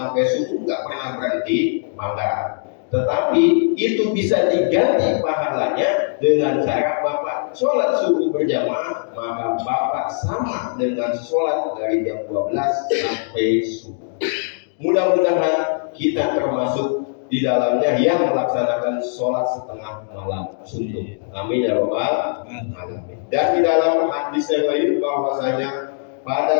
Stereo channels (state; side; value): silent; right; digital silence